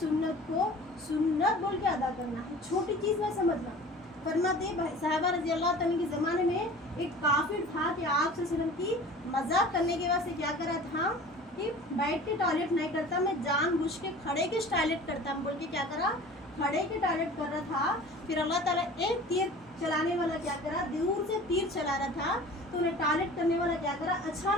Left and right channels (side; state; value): both; normal; correlation 0.42